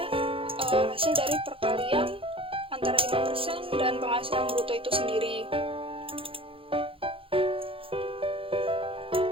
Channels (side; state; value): left; late; 0.26 ms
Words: hasil dari perkalian antara 5% dan penghasilan bruto itu sendiri.